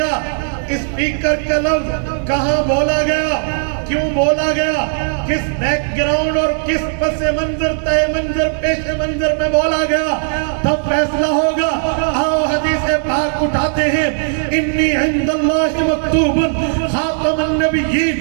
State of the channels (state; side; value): silent; left; digital silence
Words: اسپیکر کا لفظ کہاں بولا گیا، کیوں بولا گیا، کس بیک گراؤنڈ اور کس پس منظر طے منظر پیش منظر میں بولا گیا، تب فیصلہ ہوگا۔ آؤ حدیث پاک اٹھاتے ہیں، انی عند اللہ مکتوب خاتم